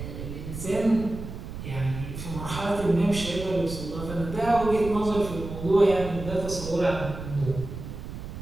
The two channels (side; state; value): right; noise; rumble, 9 dB below the sound